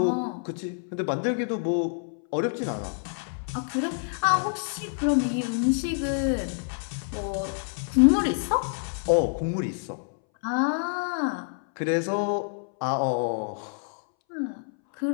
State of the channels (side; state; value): right; silent; 60 dB below the other